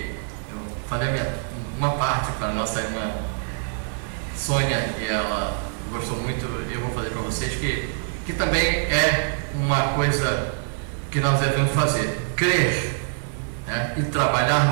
eu falei uma parte para a nossa irmã Sônia, e ela gostou muito. Eu vou fazer para vocês que também é uma coisa que nós devemos fazer, crer, né, e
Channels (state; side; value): silent; left; 62 dB below the other